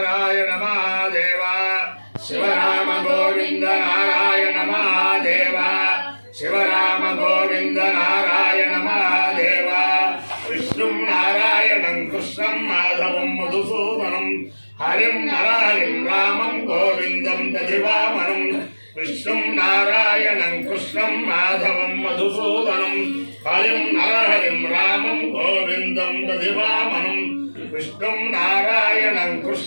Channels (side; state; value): both; inverted; correlation -1.00